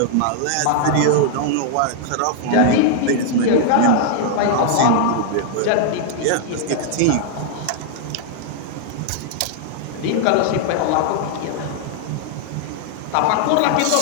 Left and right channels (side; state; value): both; different; correlation -0.01